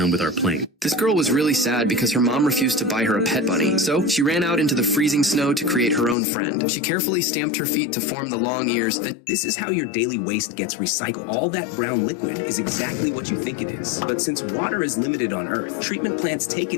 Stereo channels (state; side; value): drops out; right; at 6.2 s